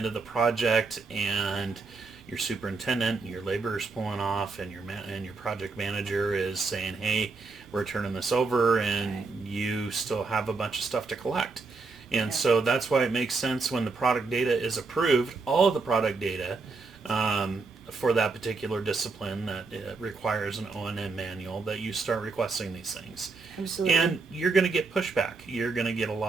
of the project and your superintendent and your laborer's pulling off, and your project manager is saying, hey, we're turning this over, and you still have a bunch of stuff to collect. And so that's why it makes sense when the product data is approved, all of the product data for that particular discipline that requires an O&M manual, that you start requesting these things. Absolutely. And you're going to get pushback. You're going to get a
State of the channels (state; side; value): quieter; left; 4.1 dB